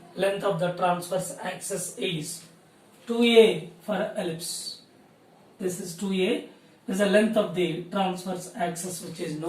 of the transverse axis is 2a for ellipse. This is 2a. This is the length of the transverse axis, which is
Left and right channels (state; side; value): identical; both; correlation 1.00